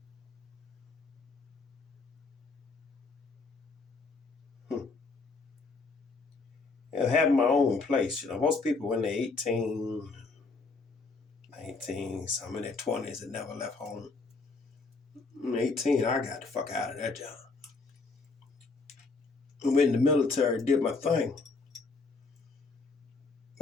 And having my own place. Most people when they're 18, 19, some in their 20s that never left home. 18, I got the fuck out of that job. I went in the military, did my thing.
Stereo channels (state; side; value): quieter; right; 4.0 dB